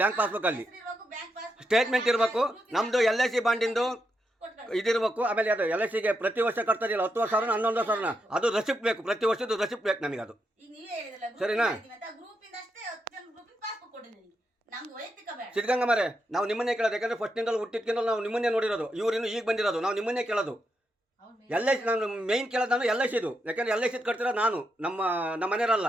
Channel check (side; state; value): both; normal; correlation 0.83